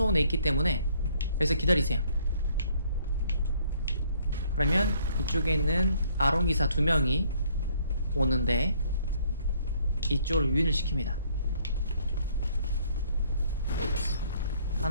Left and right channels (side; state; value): both; inverted; correlation -0.64